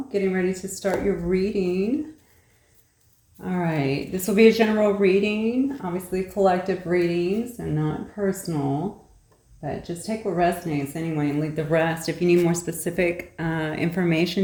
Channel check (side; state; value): both; identical; correlation 1.00